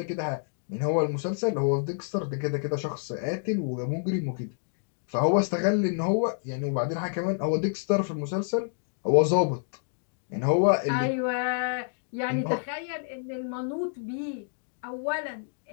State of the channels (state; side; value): silent; right; digital silence